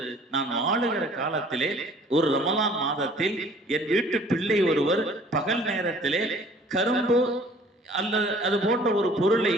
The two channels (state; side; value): normal; both; correlation 0.53